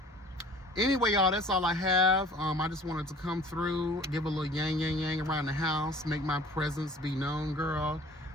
Anyway, y'all, that's all I have. I just wanted to come through, give a little yang around the house, make my presence be known, girl.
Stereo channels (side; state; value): both; normal; correlation 0.48